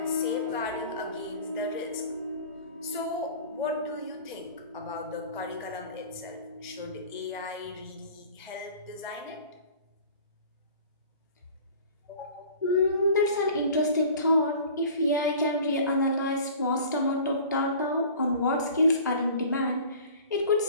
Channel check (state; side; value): inverted; both; correlation -0.44